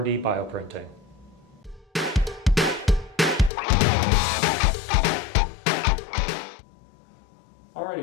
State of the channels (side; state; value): right; drops out; at 3.5 s